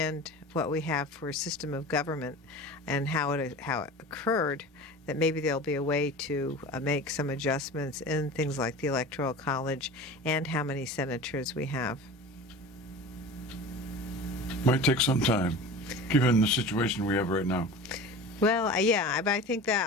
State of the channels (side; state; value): both; normal; correlation 0.35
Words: what we have for a system of government and how it occurred, that maybe there'll be a way to make some adjustments in things like the Electoral College and how many senators we have. Might take some time, given the situation we have right now. Well, but I think